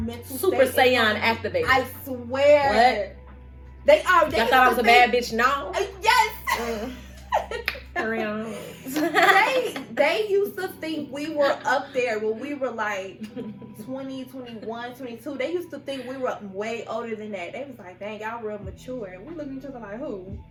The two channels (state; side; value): identical; both; correlation 1.00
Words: Super Saiyan activated. I swear. What? They are. I thought I was a bad bitch. No. Yes. they used to think we were up there when we were like 20, 21, 22. They used to think we were way older than that. They was like, dang, y'all real mature. And we look at each other like, who?